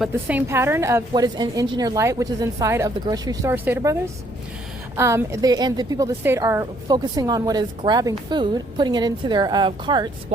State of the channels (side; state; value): both; normal; correlation 0.66